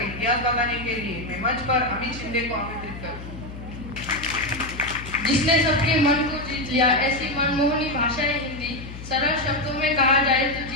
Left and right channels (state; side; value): noise; left; hum, 12 dB below the sound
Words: इतिहास बताने के लिए मैं मंच पर अमित शिंदे को आमंत्रित करूँ। जिसने सबके मन को जीत लिया, ऐसी मनमोहनी भाषा है हिंदी। सरल शब्दों में कहा जाए तो